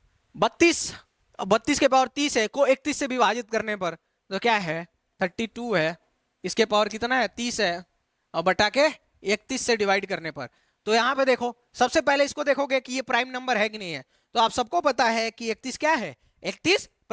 32 के पावर 30 है, को 31 से विभाजित करने पर तो क्या है 32 है, इसके पावर कितना है 30 है, और बटा के 31 से डिवाइड करने पर। तो यहां पे देखो, सबसे पहले इसको देखोगे कि ये प्राइम नंबर है कि नहीं है। तो आप सबको पता है कि 31 क्या है, 31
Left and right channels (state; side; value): identical; both; correlation 1.00